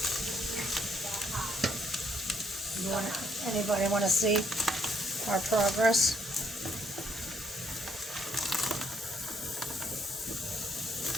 Anybody want to see our progress?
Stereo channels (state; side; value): normal; both; correlation 0.70